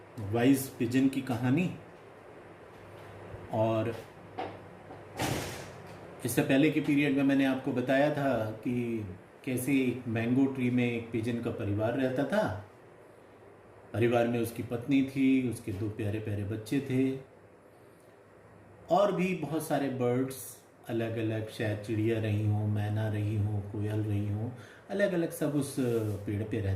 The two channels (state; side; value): identical; both; correlation 1.00